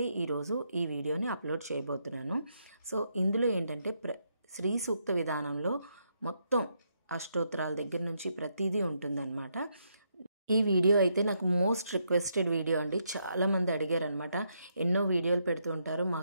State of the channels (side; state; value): both; inverted; correlation -0.78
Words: ఈరోజు ఈ వీడియోని అప్లోడ్ చేయబోతున్నాను. సో ఇందులో ఏంటంటే శ్రీ సూక్త విధానంలో మొత్తం అష్టోత్తరాల దగ్గర నుంచి ప్రతిదీ ఉంటుందన్నమాట. ఈ వీడియో అయితే నాకు మోస్ట్ రిక్వెస్టెడ్ వీడియో అండి. చాలామంది అడిగారు అనమాట. ఎన్నో వీడియోలు పెడుతూ ఉంటారు,